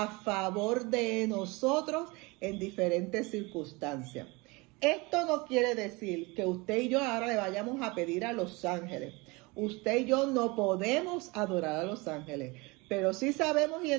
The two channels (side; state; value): left; quieter; 25.5 dB